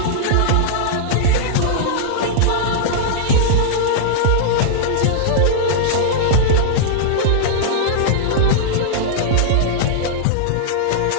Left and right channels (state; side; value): different; both; correlation -0.02